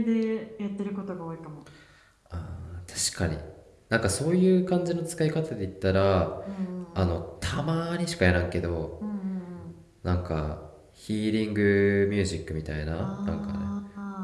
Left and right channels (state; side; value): identical; both; correlation 1.00